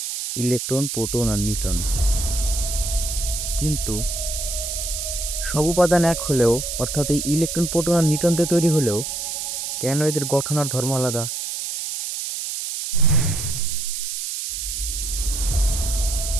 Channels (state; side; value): noise; right; hiss, 4 dB below the sound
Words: ইলেকট্রন, প্রোটন আর নিউট্রন। কিন্তু সব উপাদান এক হলেও অর্থাৎ এই ইলেকট্রন, প্রোটন আর নিউট্রন দিয়ে তৈরি হলেও কেন এদের গঠন আর ধর্ম আলাদা?